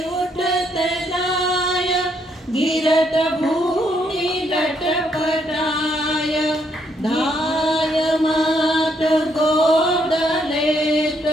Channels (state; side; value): normal; both; correlation 0.73